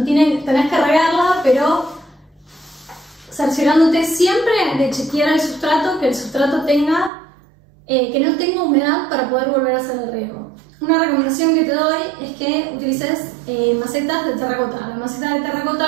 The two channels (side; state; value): left; drops out; at 7.1 s